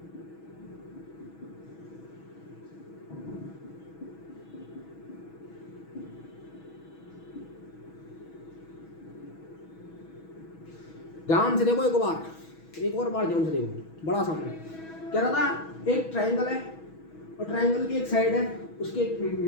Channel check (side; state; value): right; late; 6.2 ms